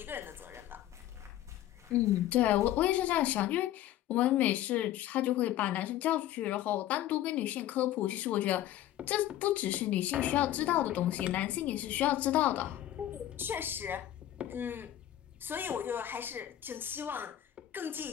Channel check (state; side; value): quieter; right; 12.9 dB